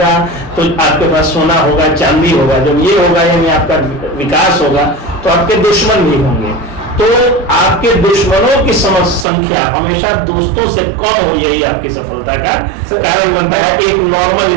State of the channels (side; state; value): left; drops out; at 9.2 s